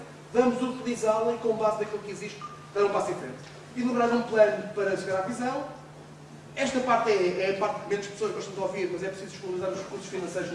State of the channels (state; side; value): identical; both; correlation 1.00